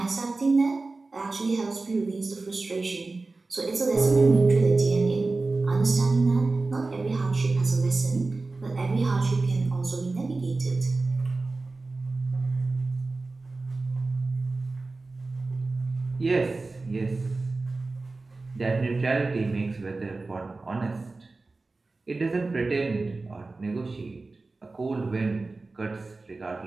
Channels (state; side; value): quieter; left; 3.5 dB